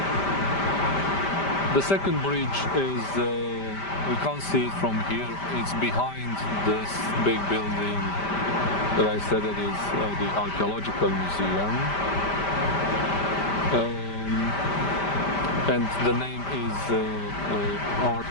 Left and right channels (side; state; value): right; late; 5.1 ms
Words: The second bridge is, we can't see it from here, it's behind this big building that I said that is the Archaeological Museum. And the name is Art